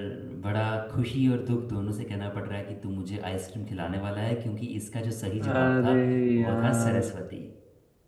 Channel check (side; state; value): both; identical; correlation 1.00